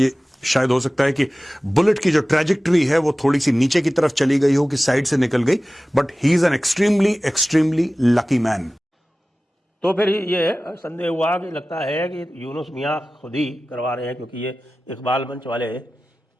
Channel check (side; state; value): both; normal; correlation 0.96